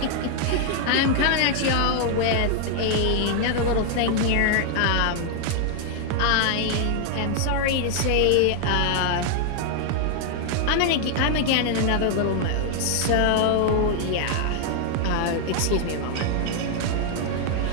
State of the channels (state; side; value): different; both; correlation 0.00